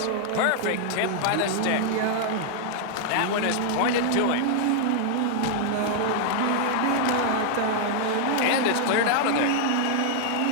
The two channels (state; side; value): different; both; correlation 0.00